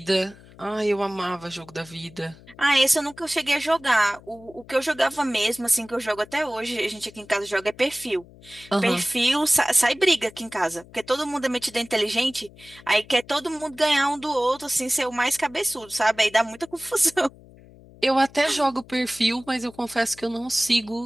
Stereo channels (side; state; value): left; noise; hum, 23 dB below the sound